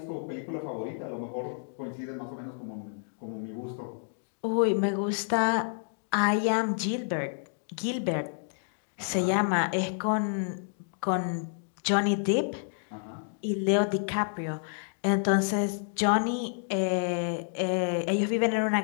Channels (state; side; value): silent; right; digital silence